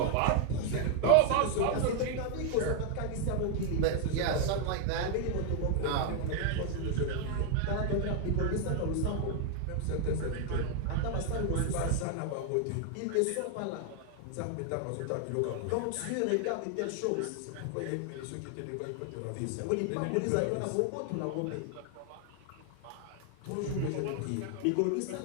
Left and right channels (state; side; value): different; both; correlation 0.00